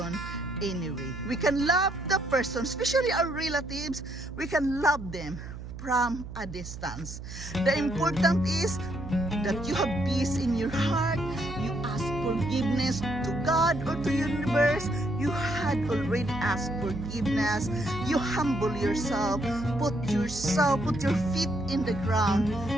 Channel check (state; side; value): noise; right; hum, 11 dB below the sound